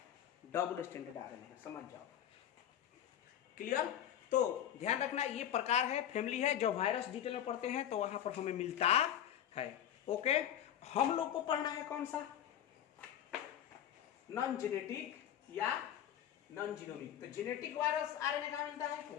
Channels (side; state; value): right; quieter; 10.6 dB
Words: आरएनए है, समझ जाओ। क्लियर? तो ध्यान रखना, ये प्रकार है, फैमिली है। जब वायरस डिटेल में पढ़ते हैं तो वहां पर हमें मिलता है। ओके, हम लोग को पढ़ना है कौन सा? नॉन जेनेटिक या नॉन जीनोमिक। तो जेनेटिक वायरस आरएनए कहां मिलता है?